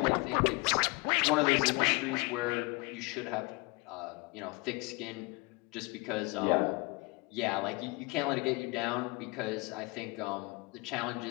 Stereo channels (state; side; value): quieter; right; 25.6 dB